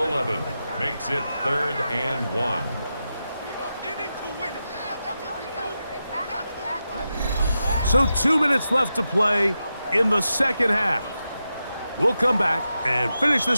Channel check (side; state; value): both; inverted; correlation -0.89